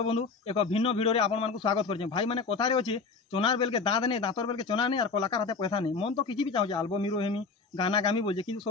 बंधु एक भिन्न भिडियो रे आपण मानकु स्वागत करछे। भाई माने कथारे अछि चोनार बेल के दांत नहीं दांतर बेल के चोना नहीं और कलाकार हाथे पैसा नहीं। मन तो किछि भी चाहूजे एल्बम हिरो हेमी गाना गामी बोलजे किंतु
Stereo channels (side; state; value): right; quieter; 4.5 dB